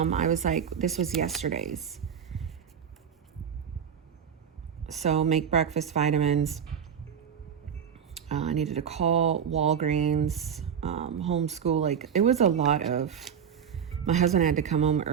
I was like, this was yesterday's. So make breakfast vitamins. I needed to call Walgreens, homeschool. Like it was a lot of, my husband had to come home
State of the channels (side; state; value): left; quieter; 7.8 dB